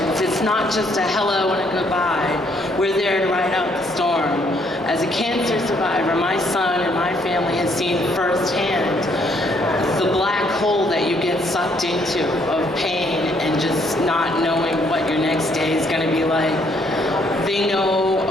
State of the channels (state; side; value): normal; both; correlation 0.68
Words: It's not just a hello and a goodbye. We're there to ride out the storm. As a cancer survivor, my son and my family has seen firsthand the black hole that you get sucked into of pain and just not knowing what your next day is going to be like. They know